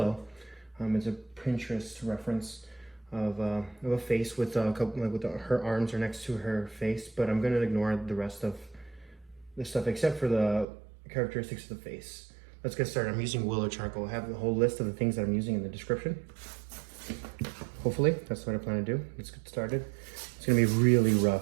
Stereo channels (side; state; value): left; drops out; at 10.7 s